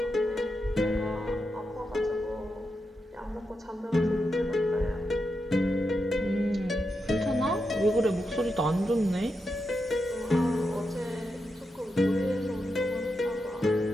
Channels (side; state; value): both; normal; correlation 0.86